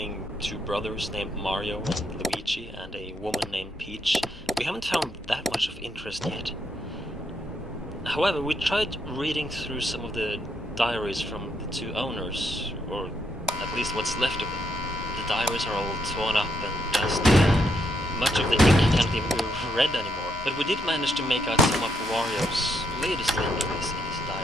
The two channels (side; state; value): both; normal; correlation 0.77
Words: 2 brothers named Mario and Luigi and a woman named Peach, we haven't found that much of interest yet. However, we tried reading through some of the diaries from the 2 owners, or at least what's left of them. The diaries are all torn up and dusty, and much of the ink can't even be read anymore. But we did manage to make out some of Wario's latest entries in his